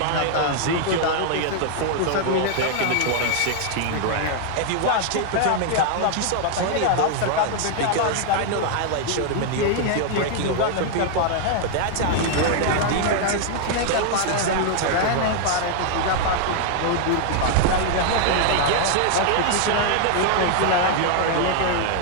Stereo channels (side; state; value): both; different; correlation 0.00